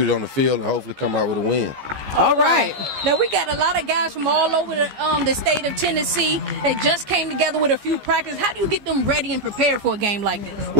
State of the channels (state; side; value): late; left; 14 ms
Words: it on the field and hopefully come out with a win. All right. Now, we got a lot of guys from all over the state of Tennessee that just came together with a few practices. How do you get them ready and prepared for a game like this?